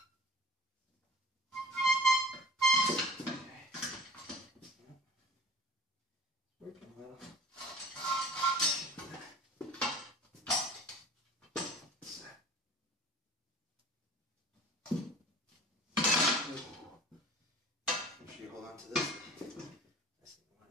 Okay. Yep. Working well. Make sure you hold on to this. Last thing you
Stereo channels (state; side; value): normal; both; correlation 0.43